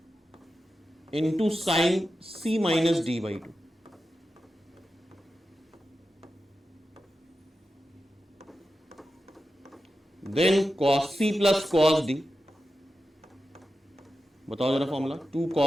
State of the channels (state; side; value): normal; both; correlation 0.91